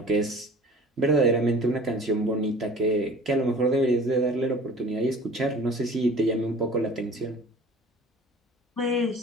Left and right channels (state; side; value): normal; both; correlation 0.45